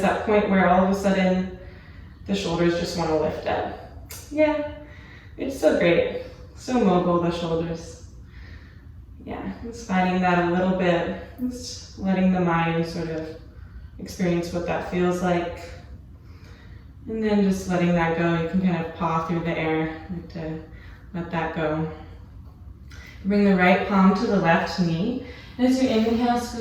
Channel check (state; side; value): identical; both; correlation 1.00